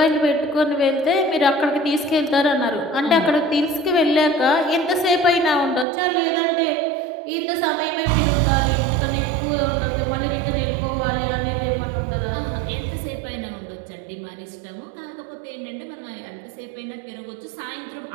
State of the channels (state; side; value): drops out; left; at 5.9 s